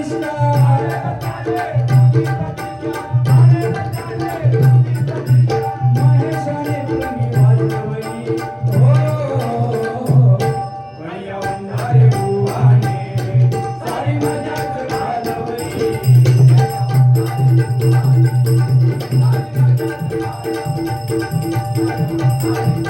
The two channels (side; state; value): both; identical; correlation 1.00